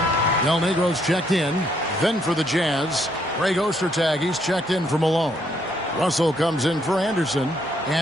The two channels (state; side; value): normal; both; correlation 0.71